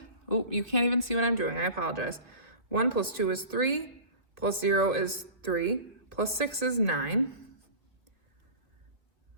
Oh, you can't even see what I'm doing. I apologize. 1 plus 2 is 3, plus 0 is 3, plus 6 is 9.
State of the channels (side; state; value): left; late; 2.4 ms